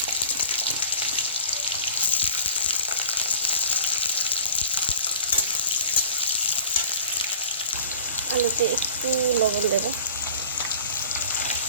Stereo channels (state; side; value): inverted; both; correlation -0.44